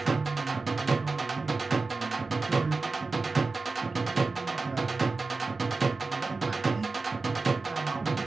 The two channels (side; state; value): left; quieter; 3.9 dB